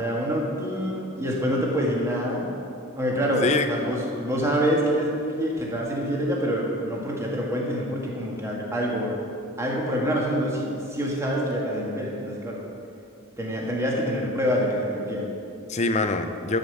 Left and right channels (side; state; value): both; normal; correlation 0.41